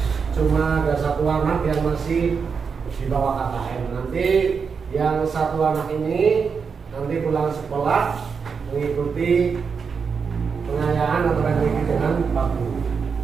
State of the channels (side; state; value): left; quieter; 5.8 dB